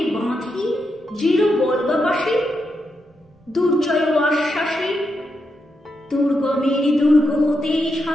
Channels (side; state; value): both; normal; correlation 0.84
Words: বাঁধি দৃঢ় বল্গাপাশে, দুর্জয় আশ্বাসে দুর্গমের দুর্গ হতে